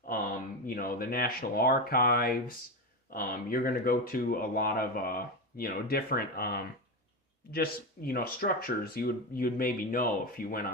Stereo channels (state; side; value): normal; both; correlation 0.16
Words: the National Archives. You're going to go to a lot of, different, just, structures you'd maybe know if you went